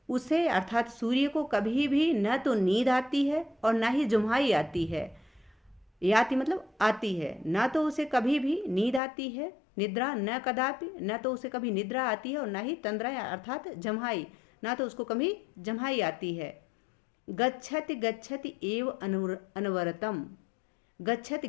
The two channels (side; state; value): right; drops out; at 9.0 s